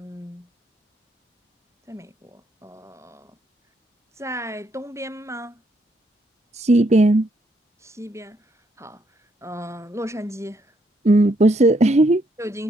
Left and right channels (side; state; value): both; normal; correlation 0.73